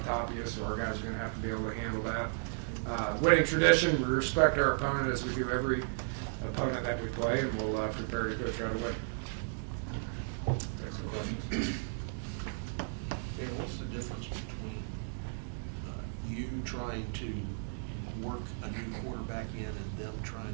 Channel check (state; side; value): silent; left; digital silence